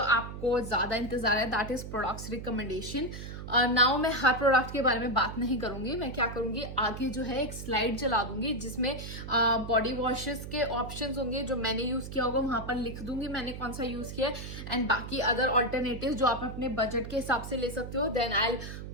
आपको ज्यादा इंतजार है, that is products recommendation. Now मैं हर प्रोडक्ट के बारे में बात नहीं करूंगी. मैं क्या करूंगी, आगे जो है एक स्लाइड चला दूंगी जिसमें बॉडी वॉशेस के ऑप्शंस होंगे जो मैंने यूज किया होगा, वहां पर लिख दूंगी मैंने कौन सा यूज किया, एंड बाकी अदर ऑल्टरनेटिव जो आप अपने बजट के हिसाब से ले सकते हो. Then I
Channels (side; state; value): right; noise; hum, 9 dB below the sound